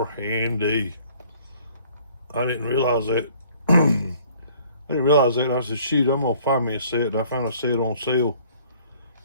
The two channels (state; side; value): inverted; both; correlation -0.56